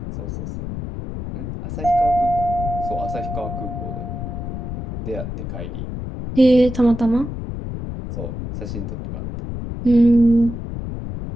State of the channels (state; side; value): noise; left; rumble, 7 dB below the sound